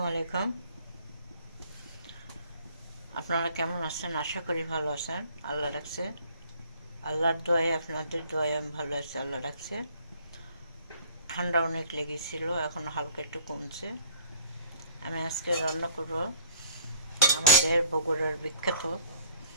আলাইকুম। আপনারা কেমন আছেন? আশা করি ভালো আছেন। আল্লাহ রাখছে, আল্লাহর দোয়ায়, আপনাদের দোয়ায় আমি ভালো আছি। আল্লাহ রাখছে। ঠান্ডা অনেক লেগেছিল, এখন হালকা একটু কমছে। আমি আজকে রান্না করব আমাদের বগুড়ার বিখ্যাত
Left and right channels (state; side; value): inverted; both; correlation -0.55